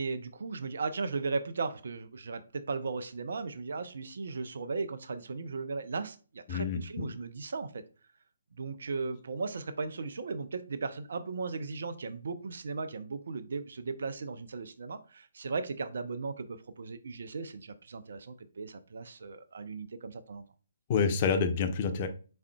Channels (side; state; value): both; inverted; correlation -0.64